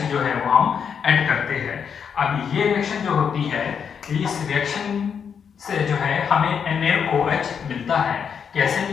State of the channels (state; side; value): quieter; right; 7.1 dB